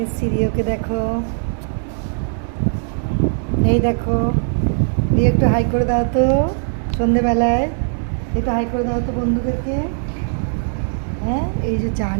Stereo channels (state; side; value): silent; left; digital silence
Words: এসেছি রিওকে। দেখো, এই দেখো রিও, একটু হাই করে দাও তো সন্ধেবেলায়, একটু হাই করে দাও তো বন্ধুদেরকে। হ্যাঁ, এই যে চা